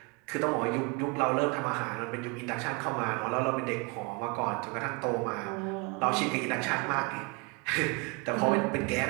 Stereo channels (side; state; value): left; quieter; 28.2 dB